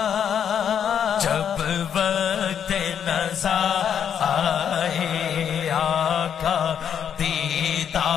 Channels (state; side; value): quieter; right; 8.4 dB